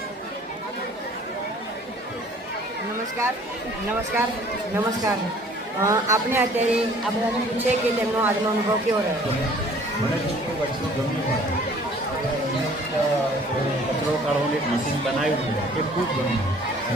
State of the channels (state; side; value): normal; both; correlation 0.54